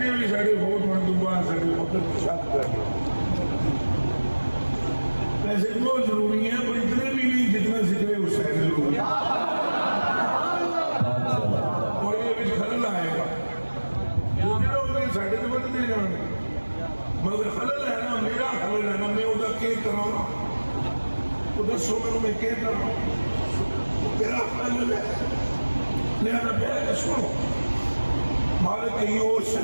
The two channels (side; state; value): both; inverted; correlation -1.00